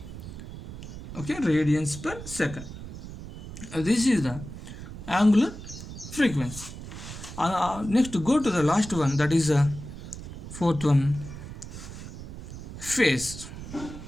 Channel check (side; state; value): right; noise; rumble, 11 dB below the sound